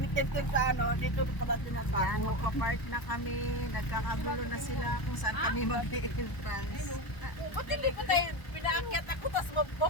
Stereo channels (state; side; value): late; right; 1.0 ms